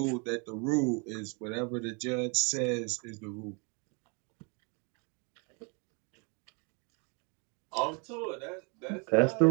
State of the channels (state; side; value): quieter; left; 33.9 dB